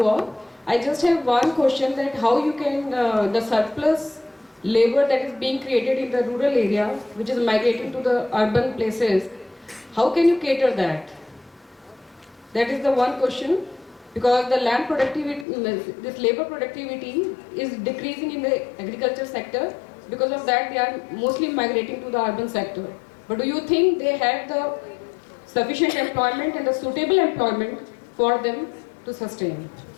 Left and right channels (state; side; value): drops out; right; at 15.5 s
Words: all. I just have one question, that how you can, the surplus labor that is being created in the rural area, which is migrating to the urban places, how can you cater that? That is the one question, because the land productivity, this labor productivity is decreasing in the agriculture sector. Because of that, they are mostly migrating to the urban sector. But do you think they have the sufficient employment and the suitable employment for them to sustain?